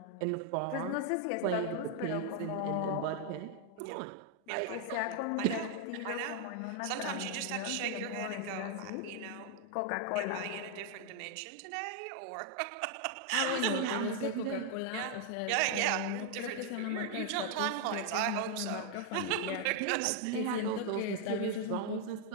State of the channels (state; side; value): different; both; correlation 0.00